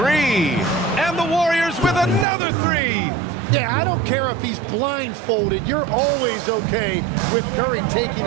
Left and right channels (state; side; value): drops out; left; at 2.2 s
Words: And the Warriors with another 3. Yeah, I don't care if he's blindfolded. You're always okay with Curry taking